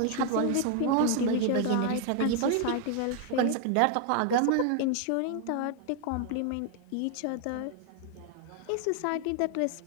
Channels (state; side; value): different; both; correlation 0.00